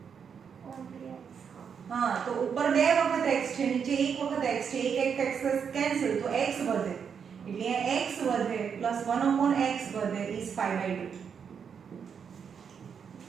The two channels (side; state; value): left; quieter; 6.9 dB